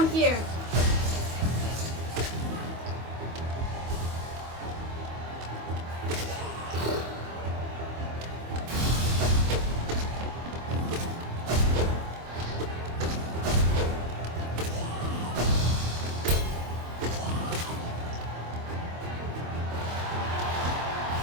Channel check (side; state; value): left; late; 25 ms